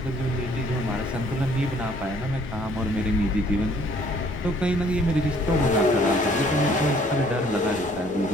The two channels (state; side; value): normal; both; correlation 0.60